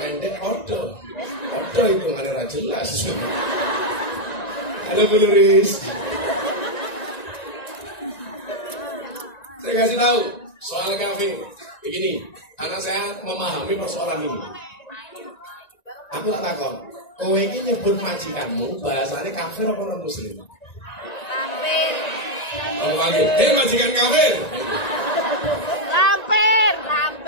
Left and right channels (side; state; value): right; late; 1.9 ms